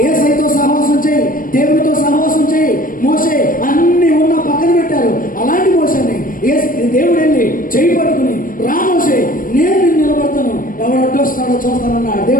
యేసయ్యతో సహవాసం చేయి, దేవుడితో సహవాసం చేయి. మోషే అన్ని ఉన్న పక్కన పెట్టారు. అలాంటి మోషేని దేవుడు వెళ్ళి చేయి పట్టుకుని, రా మోషే, నేను నిన్ను నిలబడతాను, ఎవరు అడ్డొస్తాడో చూస్తానన్నాడు.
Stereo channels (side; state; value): right; late; 0.40 ms